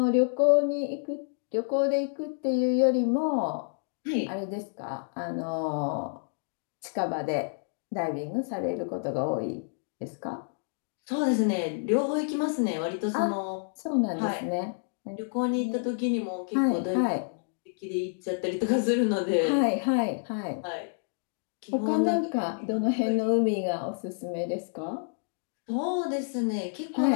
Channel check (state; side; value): silent; right; digital silence